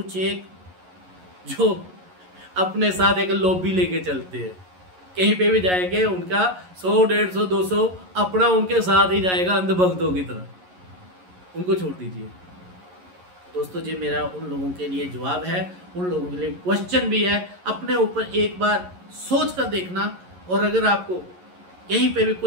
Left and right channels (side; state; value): left; late; 11 ms